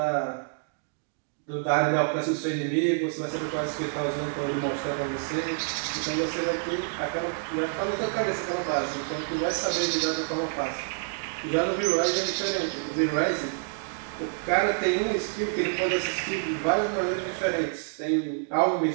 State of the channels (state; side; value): silent; left; digital silence